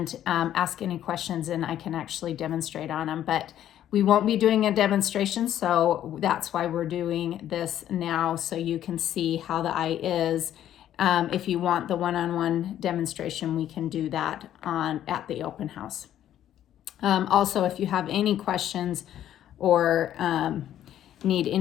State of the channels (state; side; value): quieter; right; 11.4 dB